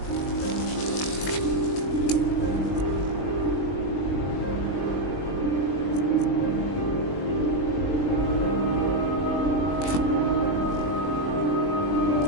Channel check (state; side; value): late; right; 20 ms